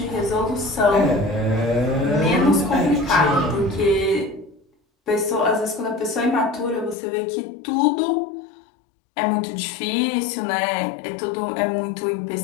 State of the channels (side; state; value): right; drops out; at 7.0 s